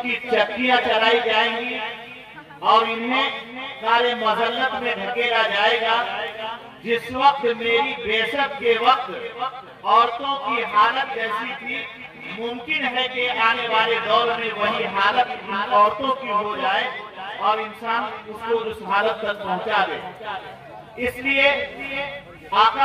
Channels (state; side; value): identical; both; correlation 1.00